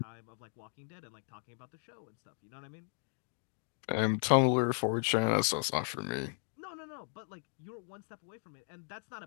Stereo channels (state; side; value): silent; right; 54 dB below the other